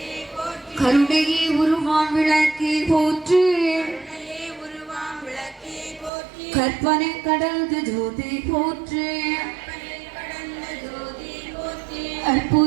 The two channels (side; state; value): left; drops out; at 6.1 s